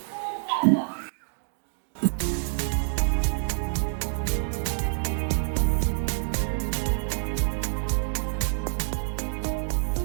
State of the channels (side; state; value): left; silent; digital silence